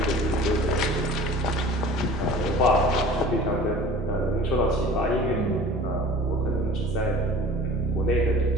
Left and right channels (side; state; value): both; normal; correlation 0.43